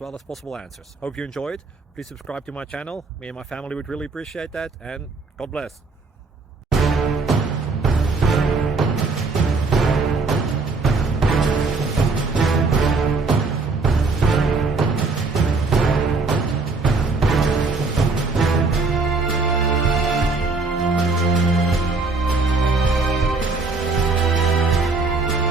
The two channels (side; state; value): left; quieter; 3.9 dB